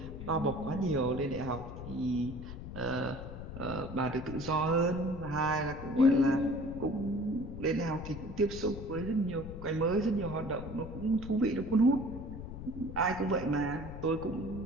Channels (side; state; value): left; noise; rumble, 10 dB below the sound